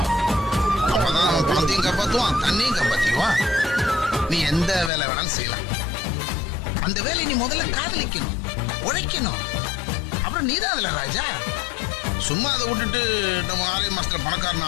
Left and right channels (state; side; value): drops out; right; at 4.9 s